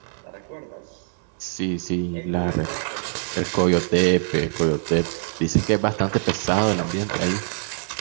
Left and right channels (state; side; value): silent; left; 63 dB below the other